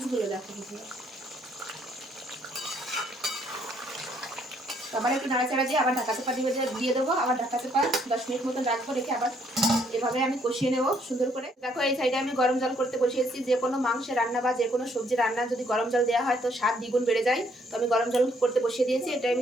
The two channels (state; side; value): normal; both; correlation 0.68